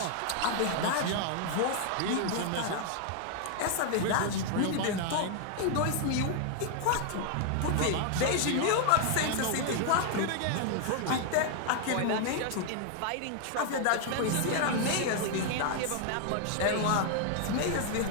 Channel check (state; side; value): different; both; correlation 0.00